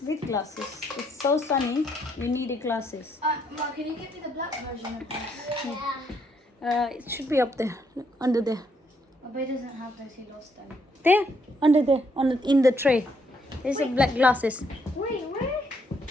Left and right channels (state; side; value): normal; both; correlation 0.72